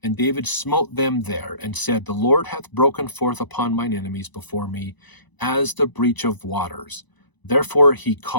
and David smote them there, and said, the Lord hath broken forth upon mine enemies before me, as the breach of waters. Therefore he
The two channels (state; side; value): late; right; 1.0 ms